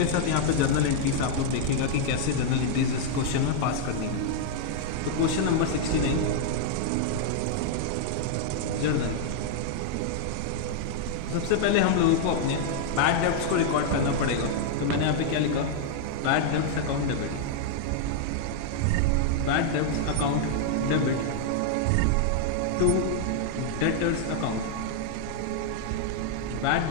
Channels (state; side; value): different; both; correlation -0.01